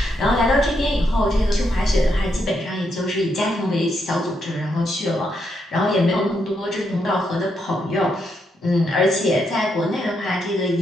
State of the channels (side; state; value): both; normal; correlation 0.79